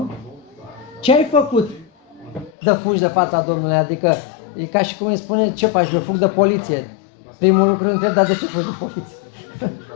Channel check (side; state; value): right; drops out; at 2.5 s